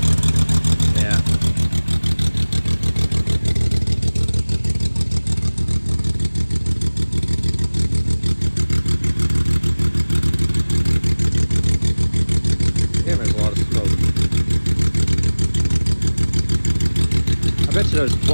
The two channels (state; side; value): inverted; both; correlation -1.00